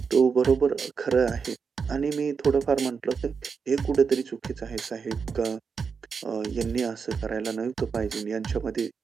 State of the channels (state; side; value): quieter; left; 5.7 dB